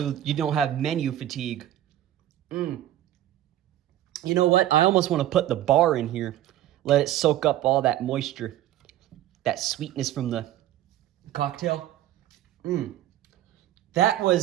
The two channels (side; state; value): left; quieter; 13.1 dB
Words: you don't have menu fatigue. You know what? I almost want to put the bar in here. Let it soak up all that moisture. That sweetness from the cocktail. That